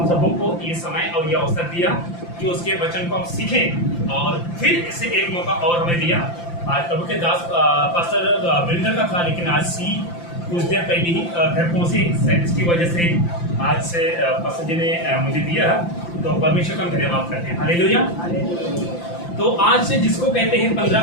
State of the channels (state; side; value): late; right; 5.8 ms